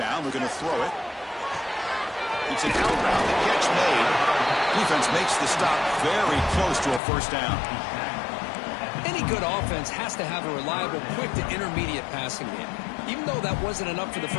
we're going to throw it. It's an out route, the catch made. Defense makes the stop very close to a first down. Any good offense has to have a reliable, quick to intermediate passing game. Even though that wasn't enough for the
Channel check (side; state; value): right; drops out; at 7.0 s